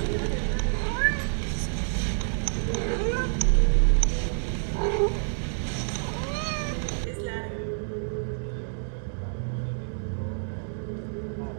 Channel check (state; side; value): silent; left; digital silence